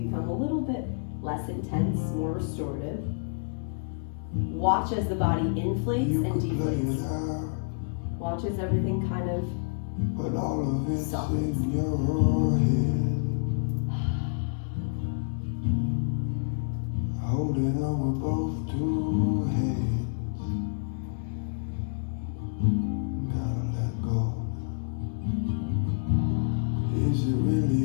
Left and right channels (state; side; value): silent; right; digital silence